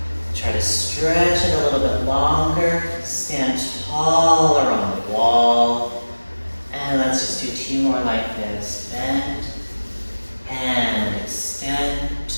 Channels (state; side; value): inverted; both; correlation -1.00